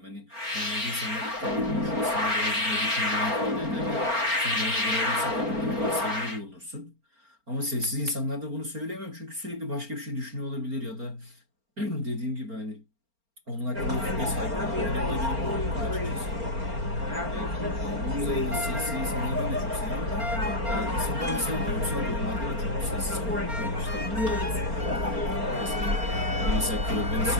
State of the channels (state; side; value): late; left; 4.4 ms